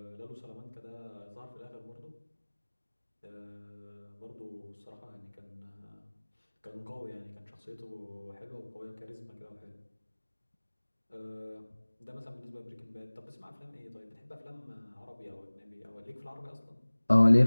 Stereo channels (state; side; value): inverted; both; correlation -1.00